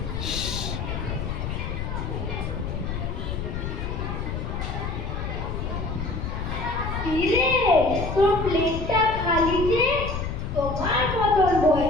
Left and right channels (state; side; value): noise; left; rumble, 4 dB below the sound